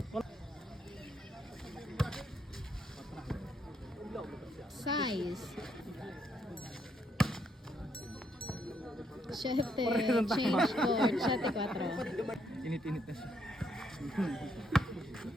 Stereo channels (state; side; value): normal; both; correlation 0.74